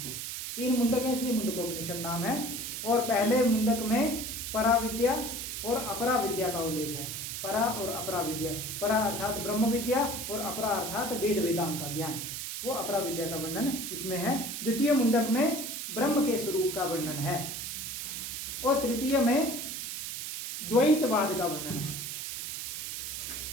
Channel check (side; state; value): right; noise; hiss, 5 dB below the sound